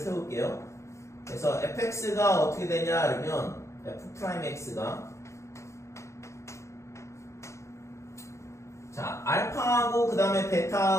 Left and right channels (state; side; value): late; right; 0.14 ms